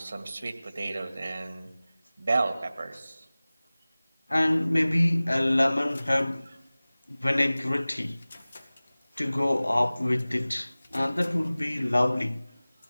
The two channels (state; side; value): inverted; both; correlation -0.99